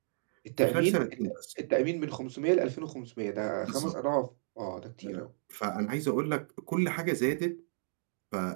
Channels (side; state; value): left; silent; digital silence